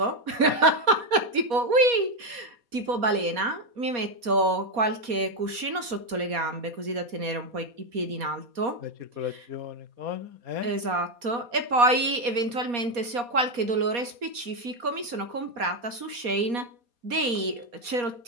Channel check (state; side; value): late; left; 4.2 ms